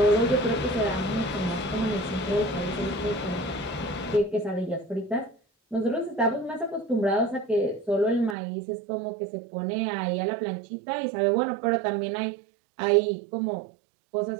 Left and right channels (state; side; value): drops out; left; at 8.3 s